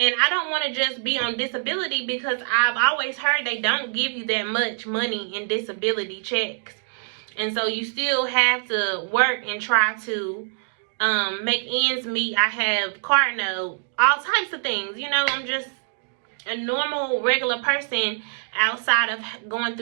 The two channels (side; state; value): left; silent; 62 dB below the other